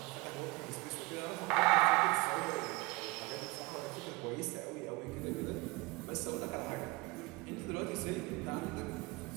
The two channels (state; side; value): quieter; left; 23.9 dB